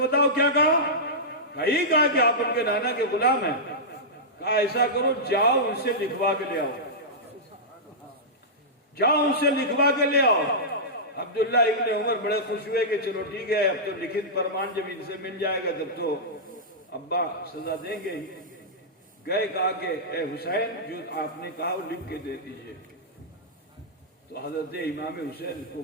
کیا کہا؟ کہا یہ کہا کہ آپ ان کے نانا کے غلام ہیں۔ کہا ایسا کرو، جاؤ ان سے لکھوا کے لے آؤ، جاؤ ان سے لکھوا کے لے آؤ۔ عبداللہ ابن عمر بڑے خوش ہوئے کہ چلو ٹھیک ہے، اب تو لکھت فرمان جب ان سے مل جائے گا تب تو ابا سزا دیں گے ہی۔ گئے، کہا کہ اے حسین جو آپ نے کہا وہ لکھ کے دے دیجئے۔ تو حضرت امام حسین کو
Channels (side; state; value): both; normal; correlation -0.13